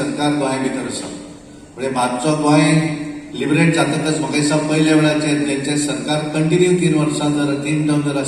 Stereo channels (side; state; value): both; identical; correlation 1.00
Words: गोंया भितर आसा. म्हणजे मातसो गोंय लिबरेट जातकच म्हाका दिसता पयल्या वेळाचेर जेंचे सरकार कंटिन्यू 3 वर्सां जर 3 टर्म जर